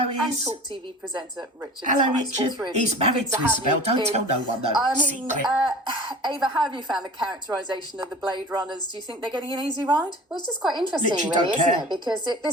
and Is. Talk TV presenter Richard Hello, Tice. All Richard. three of He's you. married Good to have Isabel. you Don't in. tell no one, though. I mean, Secret. Ava, how have you found the characterisation of the Blade Runners? Do you think they're getting an easy ride? Well, it's just quite interesting, Literally really, don't isn't care. it? Because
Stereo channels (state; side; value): normal; both; correlation 0.40